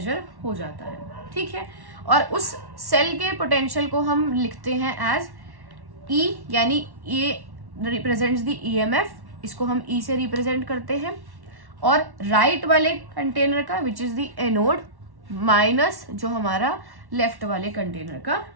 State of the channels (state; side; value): late; left; 1.1 ms